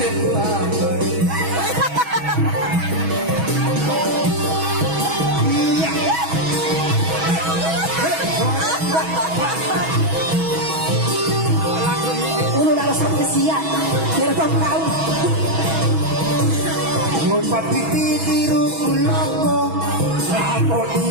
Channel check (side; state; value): left; late; 6.2 ms